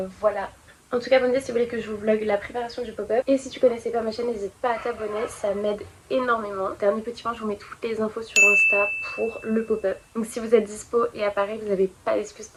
voilà. En tout cas, abonnez-vous si vous voulez que je vous vlog la préparation du pop-up. Et si tu connaissais pas ma chaîne, n'hésite pas à t'abonner, ça m'aide énormément. Dernier petit point, je vous mets toutes les infos sur Insta pour le pop-up. Donc si vous êtes dispo et à Paris, vous n'avez pas d'excuse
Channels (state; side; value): identical; both; correlation 1.00